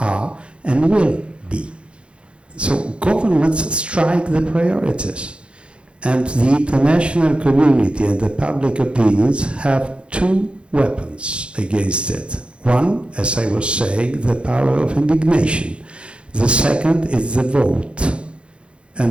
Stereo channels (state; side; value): late; left; 0.057 ms